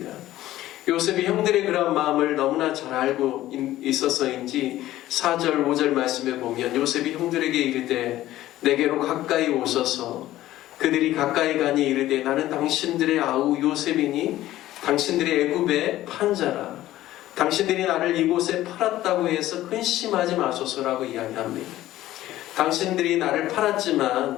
요셉이 형들의 그런 마음을 너무나 잘 알고 있어서인지 4절 5절 말씀에 보면 요셉이 형들에게 이르되 내게로 가까이 오소서. 그들이 가까이 가니 이르되 나는 당신들의 아우 요셉이니 당신들의 애굽의 판자라. 당신들이 나를 이곳에 팔았다고 해서 근심하지 마소서라고 이야기합니다. 당신들이 나를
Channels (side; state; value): right; quieter; 14.8 dB